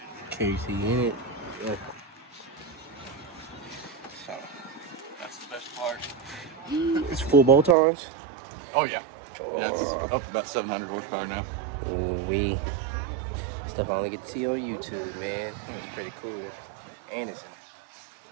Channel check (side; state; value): left; drops out; at 7.8 s